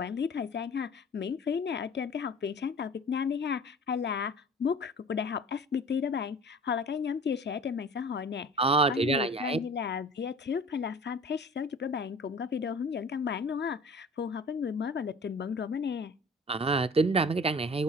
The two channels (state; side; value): normal; both; correlation 0.44